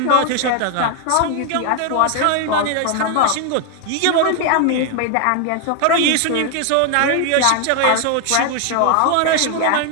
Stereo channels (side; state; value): both; different; correlation 0.01